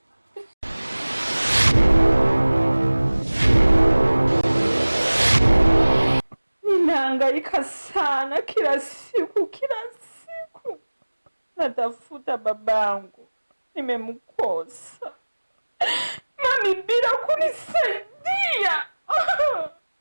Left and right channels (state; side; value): inverted; both; correlation -1.00